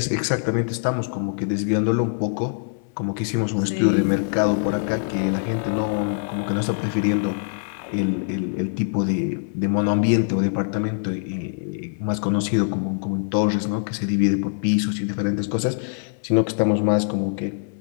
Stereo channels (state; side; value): silent; right; 63 dB below the other